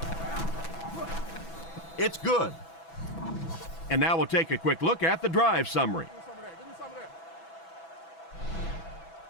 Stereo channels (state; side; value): late; right; 6.0 ms